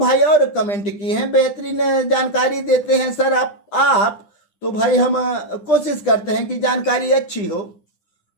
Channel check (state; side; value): late; right; 10 ms